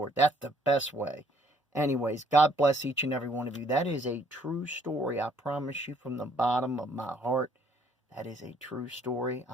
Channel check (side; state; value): both; normal; correlation 0.64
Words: That's the best way. Anyways, God bless each and every one of you. That is a true story. I promise you from the bottom of my heart, that is a true story.